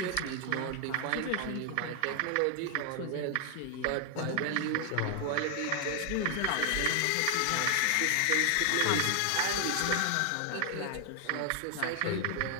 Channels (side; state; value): both; different; correlation 0.00